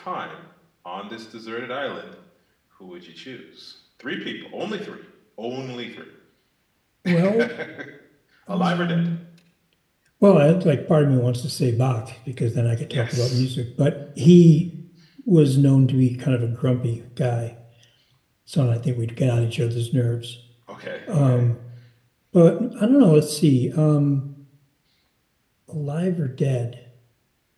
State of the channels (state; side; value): identical; both; correlation 1.00